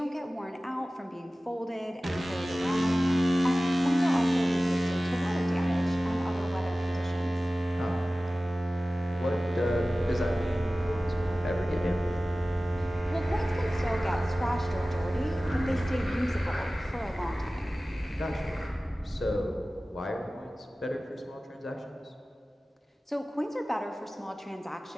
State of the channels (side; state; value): both; normal; correlation 0.97